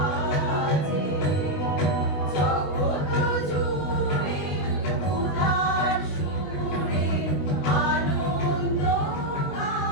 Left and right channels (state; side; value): late; right; 20 ms